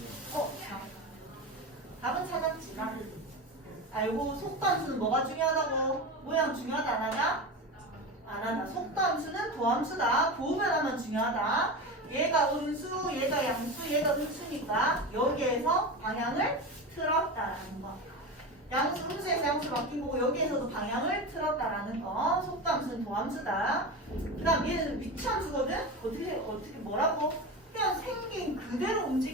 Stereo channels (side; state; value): both; normal; correlation 0.24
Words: 자. 답은 찾았지, 나. 알고 속도 함수는 뭐가 중요하다고? 모양 중요하다 안 하냐? 안 하다. 속도 함수는 도함수다. 도변하면 중요하다. 얘가 음수, 얘가 양수, 얘가 음수니까 여기에서 방향을 틀었다라는 거. 양수, 음수에서 양수 바뀐 거고 여기에서도 방향을 틀었다라는 거. 속도 함수는 도함수다. 그 다음 얘는 위치함수거든? 어떻게 뭐라고? 그냥 생긴 그대로